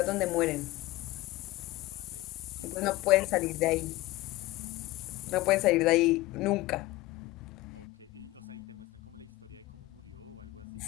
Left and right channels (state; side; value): quieter; right; 18.9 dB